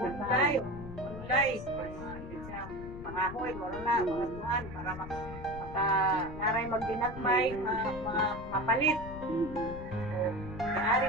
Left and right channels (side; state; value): left; noise; rumble, 11 dB below the sound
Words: Pangahoy, wala na, mga tuhan, para naray magdinagmay, mga mapalit. So, maaari